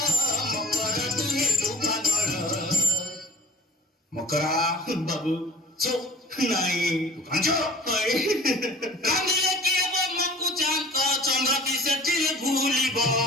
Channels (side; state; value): both; normal; correlation 0.44